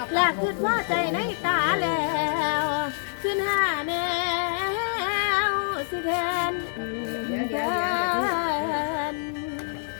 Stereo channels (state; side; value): silent; right; digital silence